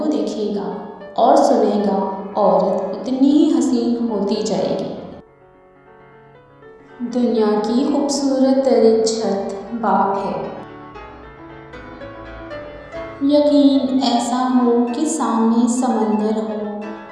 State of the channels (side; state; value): both; identical; correlation 1.00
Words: دیکھے گا اور سنے گا، عورت اتنی ہی حسین ہوتی جائے گی۔ دنیا کی خوبصورت ترین چھت باپ ہے۔ یقین ایسا ہو کہ سامنے سمندر ہو